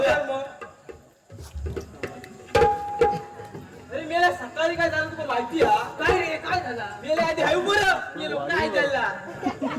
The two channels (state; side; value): identical; both; correlation 1.00